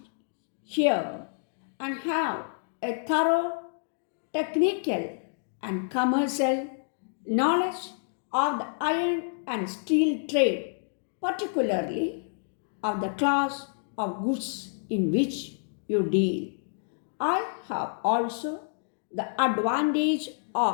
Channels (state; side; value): silent; right; digital silence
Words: here and have a thorough technical and commercial knowledge of the iron and steel trade, particularly of the class of goods in which you deal. I have also the advantage